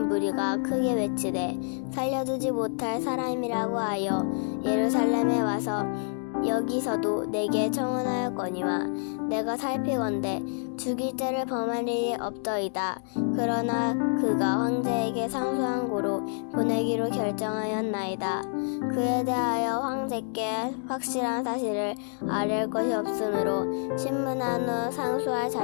무리가 크게 외치되 살려두지 못할 사람이라고 하여 예루살렘에 와서 여기서도 내게 청혼하였거니와 내가 살피건대 죽일 죄를 범할 일이 없더이다. 그러나 그가 황제에게 상소한 고로 보내기로 결정하였나이다. 그에 대하여 황제께 확실한 사실을 아뢰을 것이 없으므로 신문한 후 상소할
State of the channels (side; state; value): right; silent; 58 dB below the other